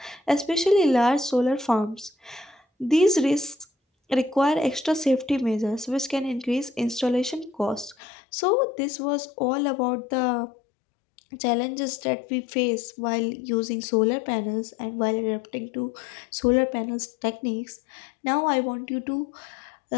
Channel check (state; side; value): drops out; right; at 8.0 s